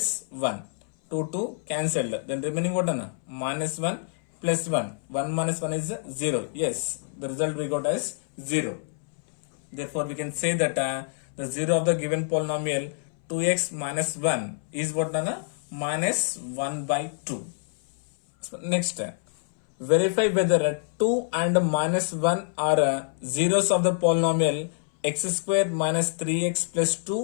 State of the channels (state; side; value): silent; right; 60 dB below the other